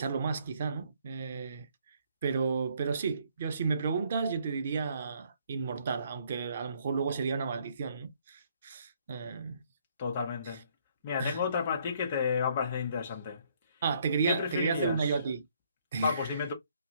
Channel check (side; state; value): both; inverted; correlation -0.66